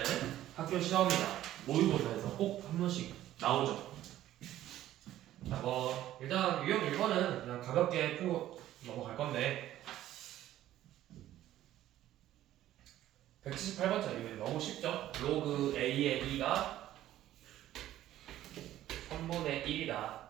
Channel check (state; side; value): quieter; left; 13.4 dB